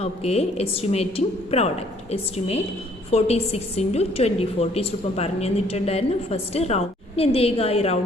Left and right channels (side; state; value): both; normal; correlation 0.62